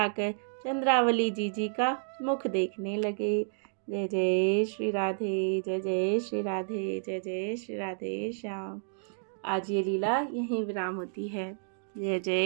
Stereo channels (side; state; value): left; silent; digital silence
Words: चंद्रावली जी का मुख देखने लगे। जय जय श्री राधे, जय जय श्री राधे, जय जय श्री राधे श्याम। आज ये लीला यहीं विराम होती है। जय